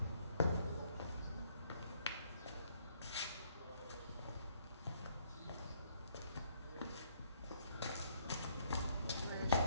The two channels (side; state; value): both; inverted; correlation -0.67